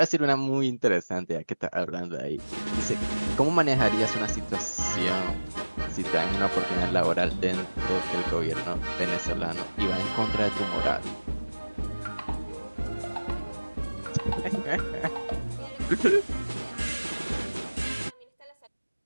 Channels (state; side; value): inverted; both; correlation -1.00